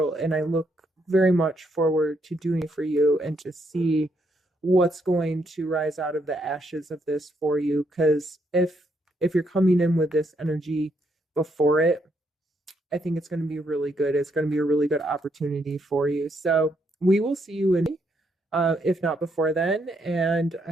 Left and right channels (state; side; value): normal; both; correlation 0.75